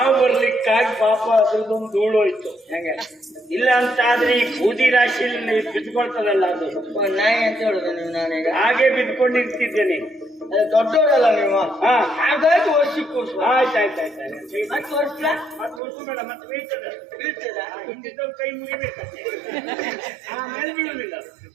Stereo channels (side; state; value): left; drops out; at 15.8 s